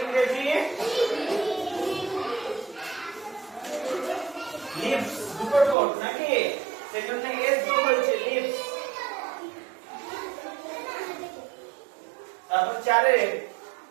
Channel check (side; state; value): left; drops out; at 5.8 s